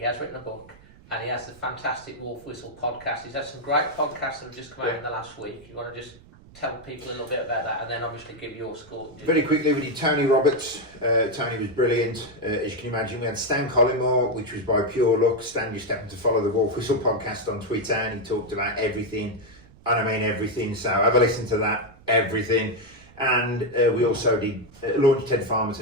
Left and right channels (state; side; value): noise; right; rumble, 23 dB below the sound